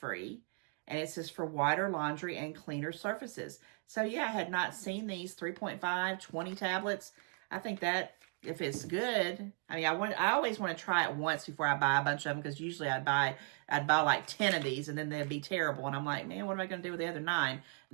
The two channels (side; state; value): left; quieter; 37.3 dB